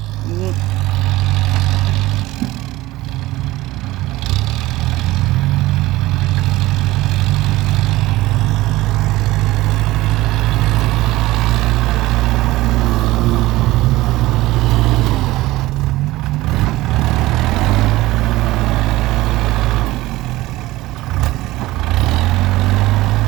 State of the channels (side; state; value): left; quieter; 18.0 dB